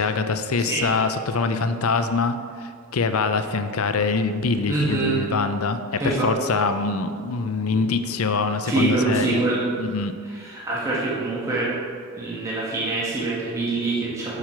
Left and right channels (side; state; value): both; normal; correlation 0.26